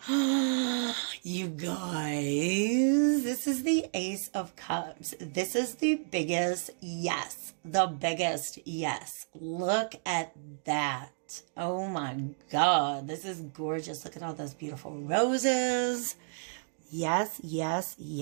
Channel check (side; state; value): left; silent; digital silence